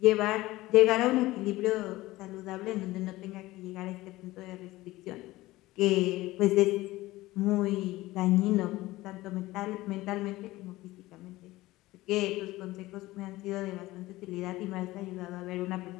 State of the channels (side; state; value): right; quieter; 18.2 dB